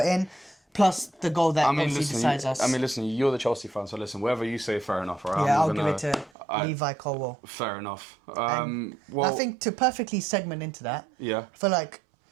in, plus the goal that obviously decides us. Listen, you're the Chelsea fan, so listen, whatever you say, fair enough, right? Yeah, I'll give it to Levi Colwell. Fair enough. I think to perfectly segment into that, Yeah. I feel like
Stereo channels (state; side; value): drops out; left; at 6.3 s